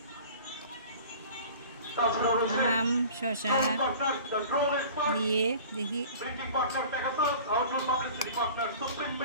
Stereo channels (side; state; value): both; inverted; correlation -0.43